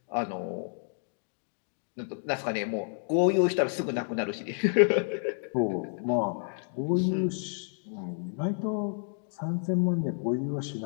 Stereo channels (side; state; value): right; silent; 58 dB below the other